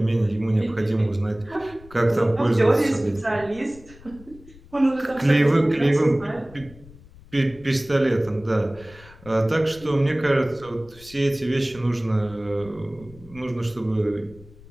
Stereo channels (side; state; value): left; noise; rumble, 22 dB below the sound